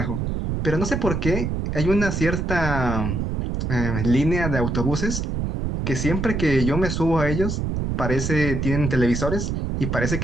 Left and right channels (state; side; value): noise; right; rumble, 2 dB below the sound